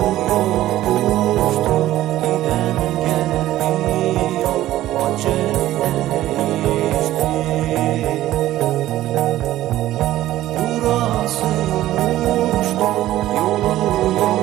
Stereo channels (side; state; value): left; quieter; 14.5 dB